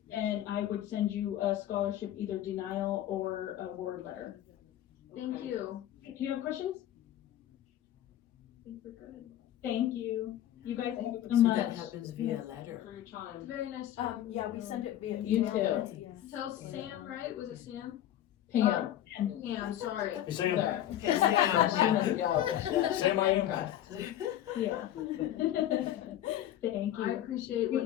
I would send you a scholarship, either denial or a award letter. Thank you. Do you have questions? I think we're good. Thank you. You guys have so So much. that happens via letter. For your time. Very nice. Yeah, we send it via You email. too. Tell Sam, right? Was it Sam? Pam. Yeah, I'm sorry. Hey, Sam. Okay, Sam. Sam, I am. Yeah. Thank you. I appreciate what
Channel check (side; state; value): right; quieter; 12.2 dB